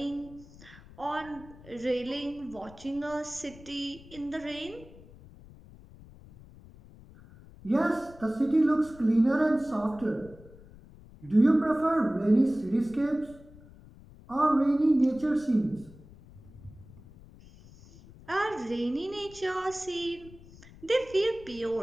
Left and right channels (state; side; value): noise; left; rumble, 21 dB below the sound